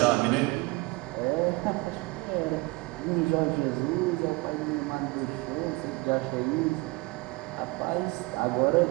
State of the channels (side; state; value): left; quieter; 24.4 dB